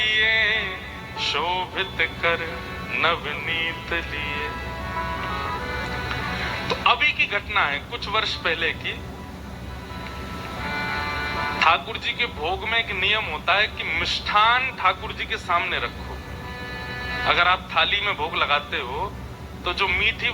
शोभित कर नवनीत लिए। तो अभी की घटना है, कुछ वर्ष पहले की। ठाकुर जी के भोग में एक नियम होता है कि मिष्ठान ठाकुर जी के सामने रखो। अगर आप थाली में भोग लगाते हो तो जो मीठी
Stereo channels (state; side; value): identical; both; correlation 1.00